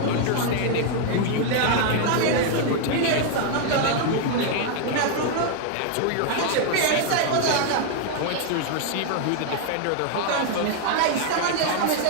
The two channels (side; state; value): both; different; correlation 0.00